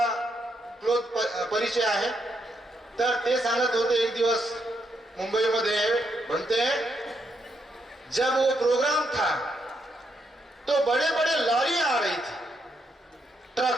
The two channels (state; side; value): normal; both; correlation 0.78